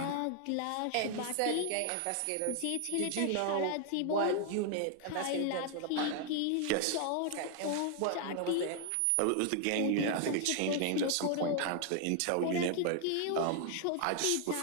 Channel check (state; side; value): different; both; correlation 0.00